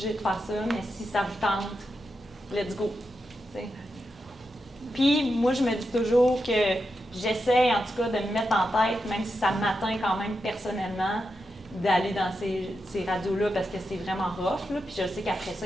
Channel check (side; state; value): both; normal; correlation 0.87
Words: de faire ça, mais si ça vous tente, let's go. T'sais. Puis moi, je me dis toujours que j'essaie en tout cas de me mettre en tête, même si ça m'atteint quand même personnellement, d'aller dans ces radios-là parce que c'est vraiment rough. Là. Puis je sais qu'après ça,